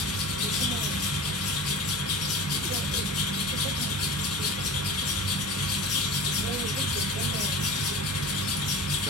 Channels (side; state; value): both; normal; correlation 0.35